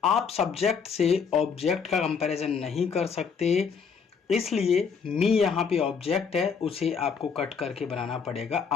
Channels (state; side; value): quieter; right; 6.1 dB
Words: आप सब्जेक्ट से ऑब्जेक्ट का कंपैरिजन नहीं कर सकते, इसलिए मी यहाँ पे ऑब्जेक्ट है, उसे आपको कट करके बनाना पड़ेगा